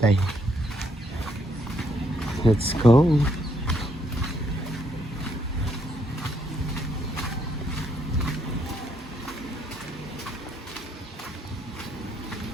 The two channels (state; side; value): normal; both; correlation 0.73